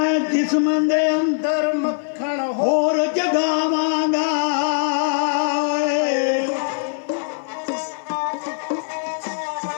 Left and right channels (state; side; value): silent; right; 65 dB below the other